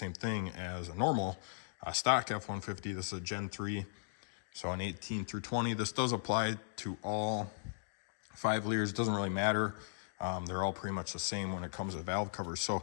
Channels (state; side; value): silent; right; digital silence